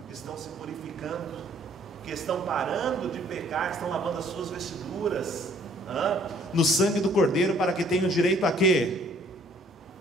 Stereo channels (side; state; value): both; normal; correlation 0.59